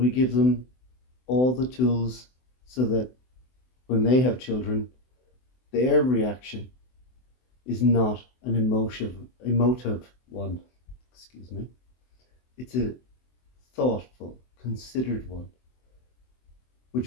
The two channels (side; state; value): right; late; 24 ms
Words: give them all the tools so that when they have children, their reaction is not an emotive one. Excuse me. It's a thoughtful, considered one,